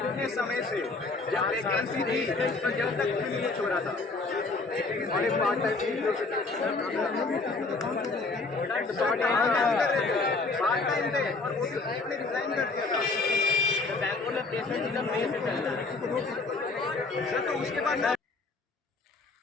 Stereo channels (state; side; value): quieter; right; 3.7 dB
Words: समय से जब वैकेंसी थी तो जब तक कुछ नहीं छोड़ा था, और एक पार्ट टाइम थे और वो भी आपने रिजाइन कर दिया था। बैंगलोर में प्लेसमेंट सीजन में से चल रहा है सर, तो उसके बाद